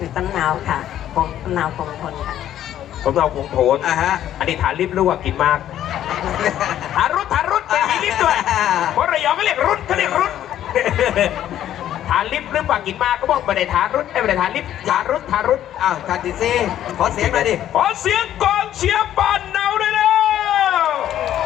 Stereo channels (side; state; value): right; quieter; 11.6 dB